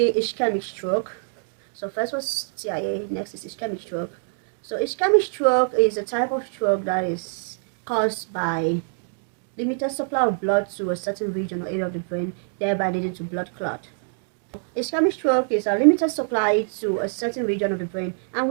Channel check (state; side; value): silent; left; digital silence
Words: ischemic stroke. So first was TIA, next is ischemic stroke. So ischemic stroke is a type of stroke that is caused by limited supply of blood to a certain region or area of the brain, thereby leading to blood clot. Ischemic stroke is a limited supply to a certain region of the brain, and